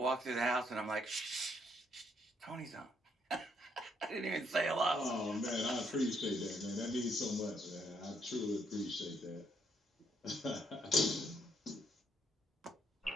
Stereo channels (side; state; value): both; normal; correlation 0.72